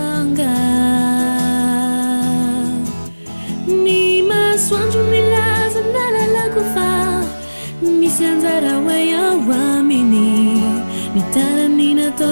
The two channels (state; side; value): inverted; both; correlation -1.00